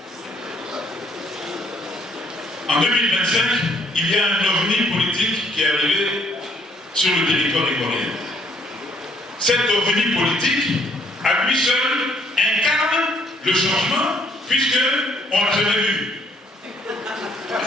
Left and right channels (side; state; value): both; normal; correlation 0.66